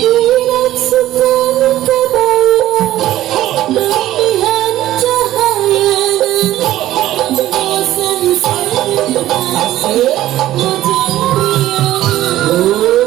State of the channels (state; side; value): quieter; left; 14.3 dB